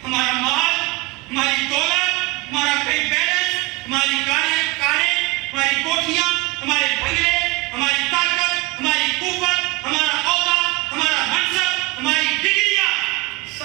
ہمارا مال، ہماری دولت، ہمارا بینک بیلنس، ہماری کاریں، ہماری کوٹھیاں، ہمارے بنگلے، ہماری طاقت، ہماری قوت، ہمارا عہدہ، ہمارا منصب، ہماری ڈگریاں،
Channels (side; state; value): left; quieter; 22.8 dB